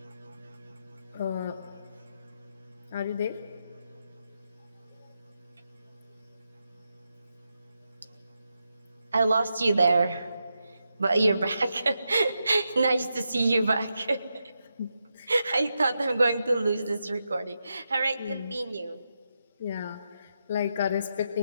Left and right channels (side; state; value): both; inverted; correlation -0.86